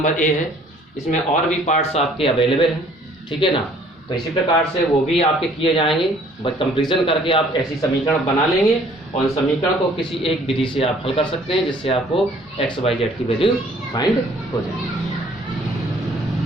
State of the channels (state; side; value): normal; both; correlation 0.57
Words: ए है, इसमें और भी पार्ट्स आपके अवेलेबल हैं, ठीक है ना। तो इसी प्रकार से वो भी आपके किए जाएंगे, बस कंपैरिजन करके आप ऐसी समीकरण बना लेंगे और उन समीकरण को किसी एक विधि से आप हल कर सकते हैं, जिससे आपको एक्स वाई जेड की वैल्यू फाइंड हो जाए।